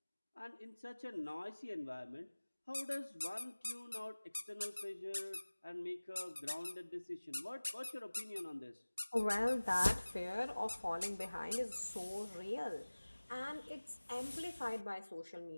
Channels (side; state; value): both; inverted; correlation -1.00